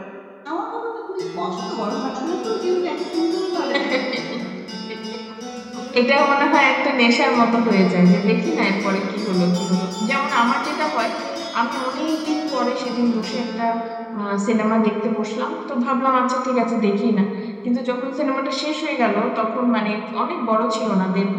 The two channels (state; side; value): identical; both; correlation 1.00